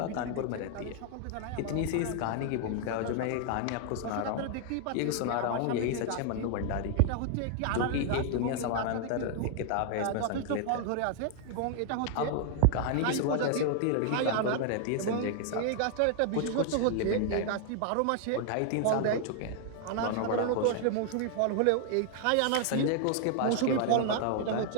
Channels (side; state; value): both; different; correlation 0.00